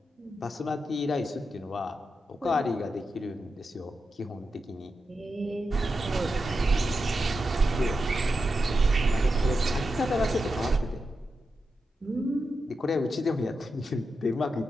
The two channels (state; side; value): normal; both; correlation 0.88